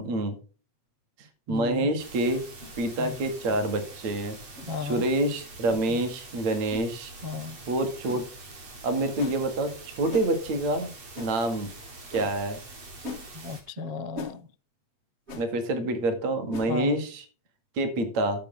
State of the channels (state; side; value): late; left; 8.3 ms